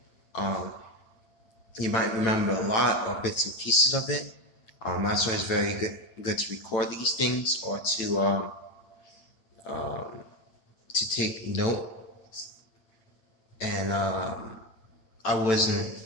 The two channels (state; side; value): late; right; 9.0 ms